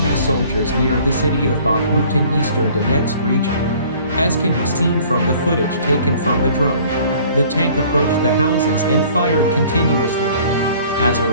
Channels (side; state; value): both; inverted; correlation -0.53